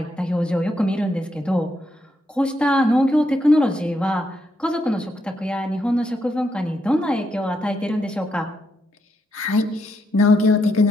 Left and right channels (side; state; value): both; normal; correlation 0.79